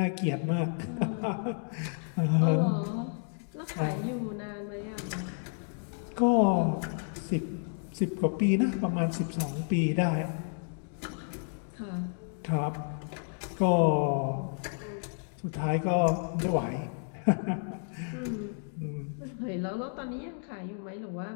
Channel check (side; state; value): right; silent; 57 dB below the other